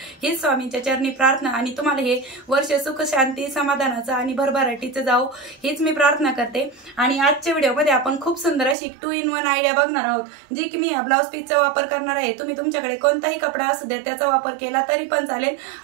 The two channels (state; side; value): drops out; left; at 8.8 s